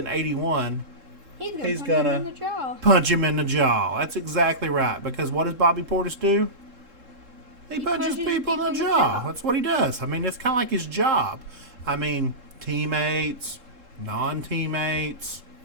81, He's gonna gonna him in the jaw. punch him in the jaw. That's exactly right. Because what does Bobby Portis do? He punches people in the jaw. That's what he does. I mean, it's kind of like his job. I mean, teammates, non-teammates,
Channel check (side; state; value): left; late; 3.7 ms